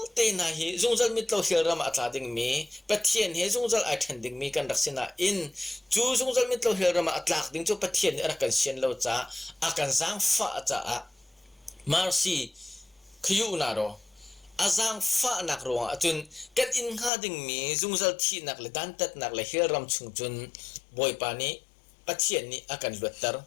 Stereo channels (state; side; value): drops out; right; at 17.1 s